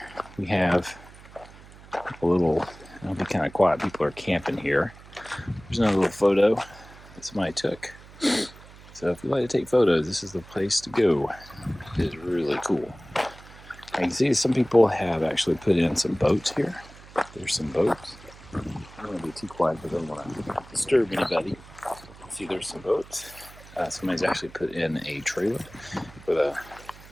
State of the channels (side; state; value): right; noise; hum, 20 dB below the sound